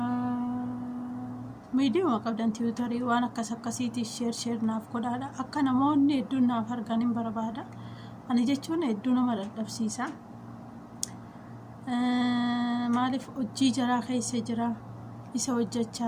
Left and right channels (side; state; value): both; identical; correlation 1.00